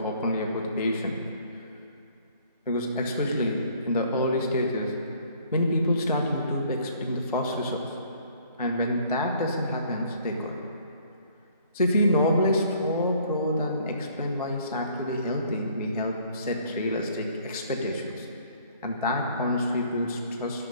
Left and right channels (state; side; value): inverted; both; correlation -0.59